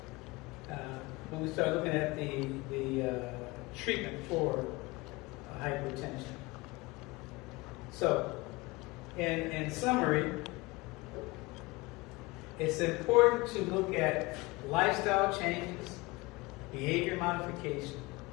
when we start looking at the treatment for hypertension. So, in summary, it's important to look at lifestyle changes, behavior modification,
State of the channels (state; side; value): quieter; right; 23.0 dB